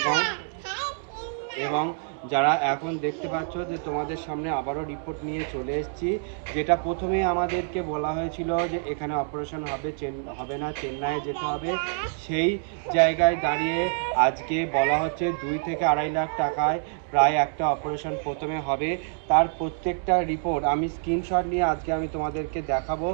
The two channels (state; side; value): silent; left; digital silence